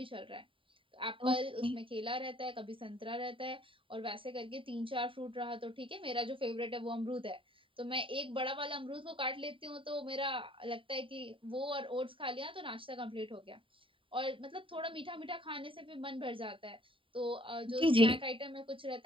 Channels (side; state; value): left; late; 0.25 ms